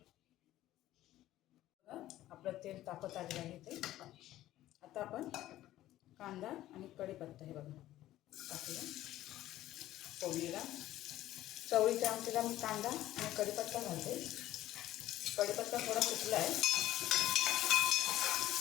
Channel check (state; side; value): quieter; right; 14.5 dB